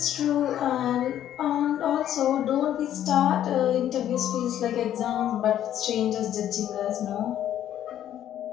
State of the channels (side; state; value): right; quieter; 11.2 dB